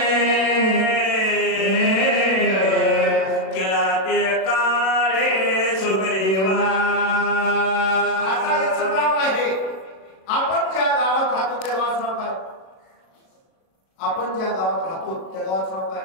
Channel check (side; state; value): right; late; 37 ms